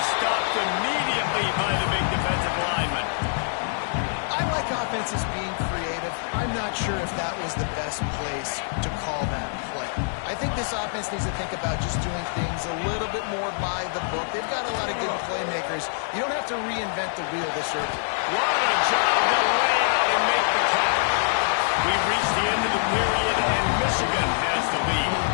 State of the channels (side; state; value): right; silent; digital silence